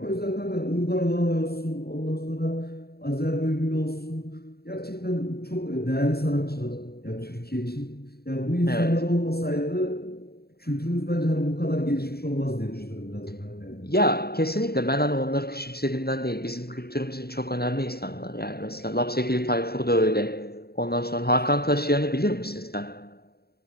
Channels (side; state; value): right; late; 0.46 ms